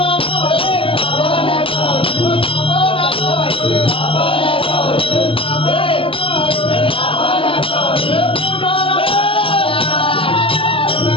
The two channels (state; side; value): late; right; 0.26 ms